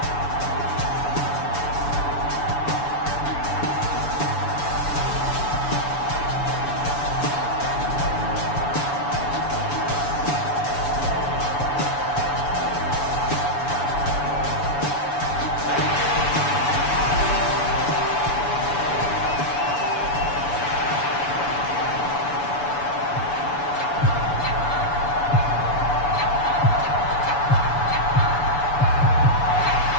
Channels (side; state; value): right; late; 6.9 ms